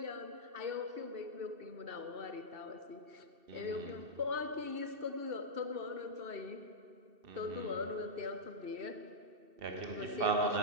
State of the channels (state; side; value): late; left; 2.7 ms